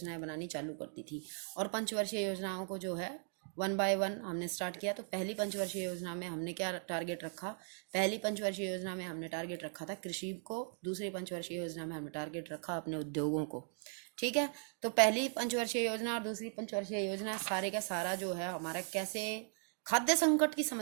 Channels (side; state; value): left; silent; 52 dB below the other